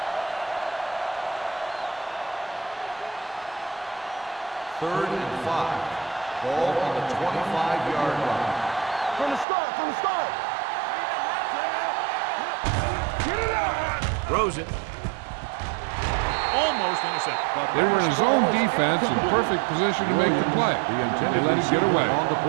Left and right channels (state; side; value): drops out; left; at 9.5 s